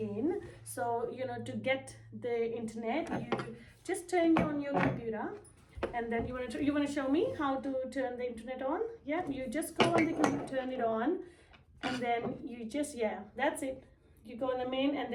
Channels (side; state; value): both; identical; correlation 1.00